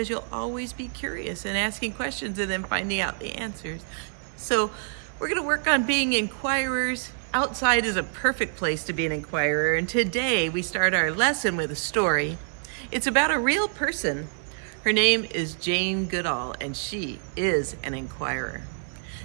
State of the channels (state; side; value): silent; left; digital silence